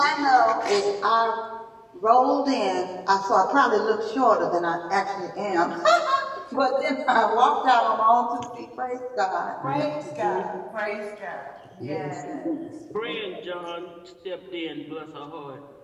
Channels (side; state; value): both; identical; correlation 1.00